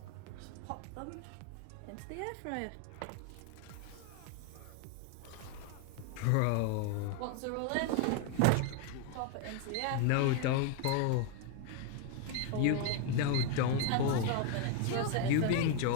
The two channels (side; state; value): both; different; correlation 0.01